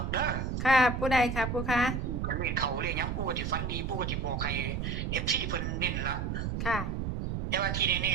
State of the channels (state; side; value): noise; right; rumble, 2 dB below the sound